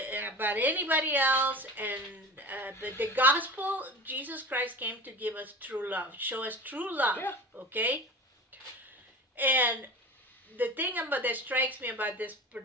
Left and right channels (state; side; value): normal; both; correlation 0.34